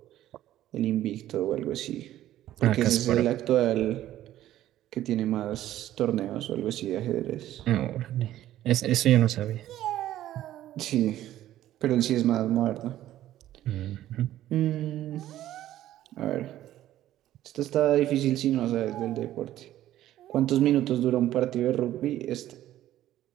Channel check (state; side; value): quieter; left; 13.3 dB